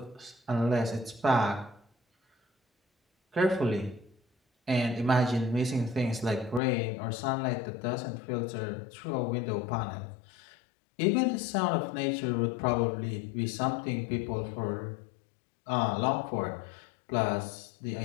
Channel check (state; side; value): drops out; right; at 6.6 s